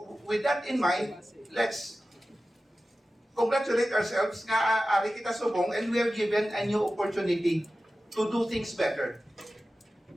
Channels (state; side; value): normal; both; correlation 0.95